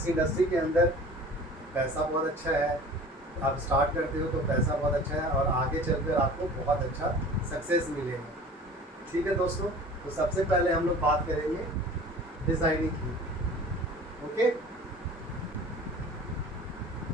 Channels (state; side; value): normal; both; correlation 0.42